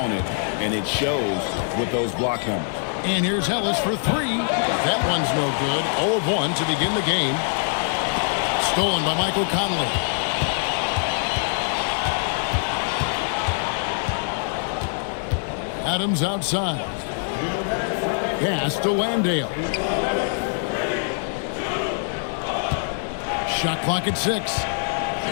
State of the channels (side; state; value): right; silent; digital silence